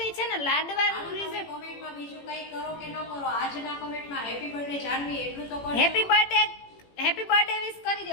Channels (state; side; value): late; right; 18 ms